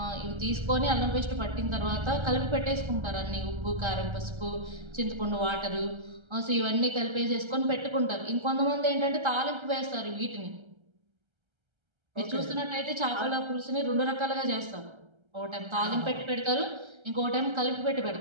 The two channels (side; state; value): left; late; 1.3 ms